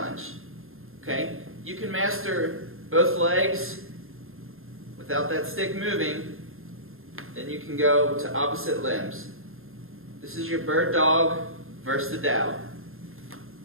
Okay? You can master both legs without that stick moving, then you can go to opposite limbs. This is your bird dog versus the dow.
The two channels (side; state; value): left; late; 0.61 ms